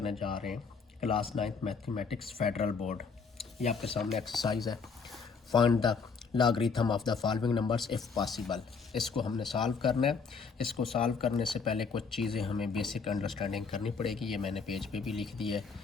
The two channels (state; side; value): quieter; right; 5.3 dB